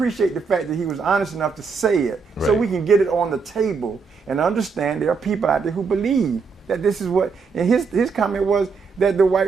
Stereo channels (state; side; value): quieter; left; 5.1 dB